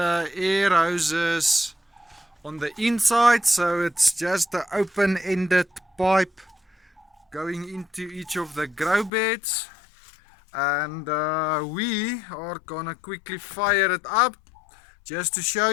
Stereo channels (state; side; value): drops out; right; at 9.1 s